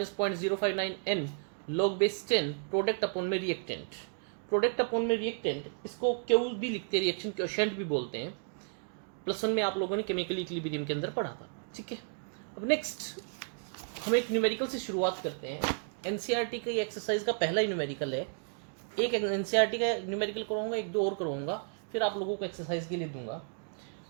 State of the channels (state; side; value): silent; left; 56 dB below the other